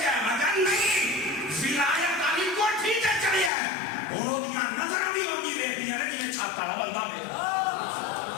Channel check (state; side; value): drops out; right; at 3.5 s